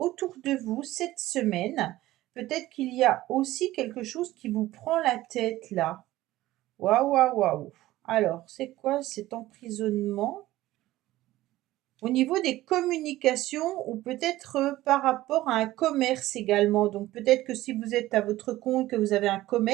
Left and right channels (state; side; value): quieter; left; 16.2 dB